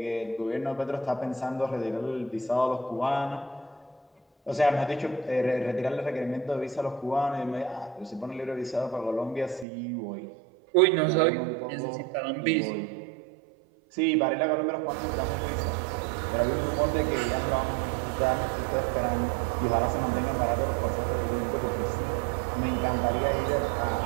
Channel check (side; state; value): left; drops out; at 9.7 s